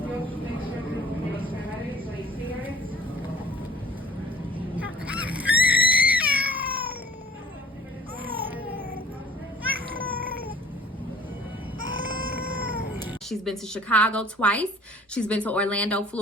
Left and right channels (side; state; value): both; normal; correlation 0.52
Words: She's been to Chicago twice. She's been to Orlando,